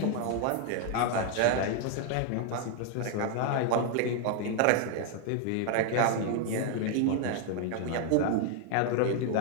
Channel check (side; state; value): both; different; correlation 0.00